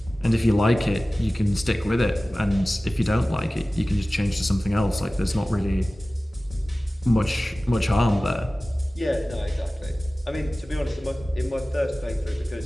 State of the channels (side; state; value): both; normal; correlation 0.97